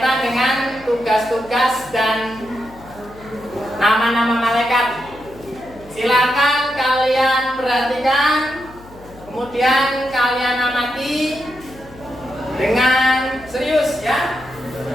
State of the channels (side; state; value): left; noise; hum, 21 dB below the sound